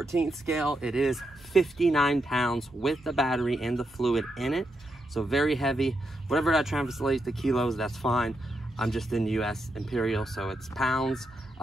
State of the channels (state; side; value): normal; both; correlation 0.83